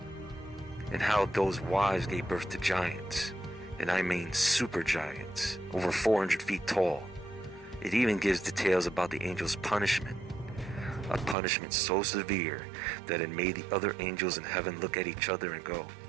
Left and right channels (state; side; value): drops out; left; at 11.4 s